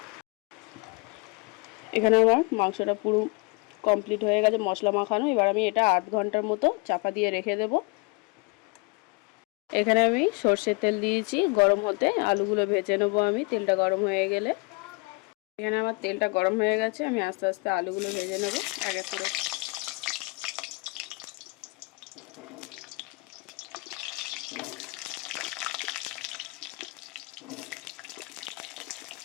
এখানে আমার মাংসটা পুরো কমপ্লিট হয়ে গেছে মশলা মাখানো। এবার আমি এটা আধ ঘন্টার মতো চাপা দিয়ে রেখে দেব। এখানে আমি সর্ষের তেল দিয়েছি গরম হতে, আলুগুলো ভেজে নেবো আমি তেলটা গরম হয়ে গেলে। এখানে আমার তেলটা গরম হয়ে গেছে, আমি আস্তে আস্তে আলুগুলো ভেজে নেব এক এক করে।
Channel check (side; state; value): right; quieter; 27.9 dB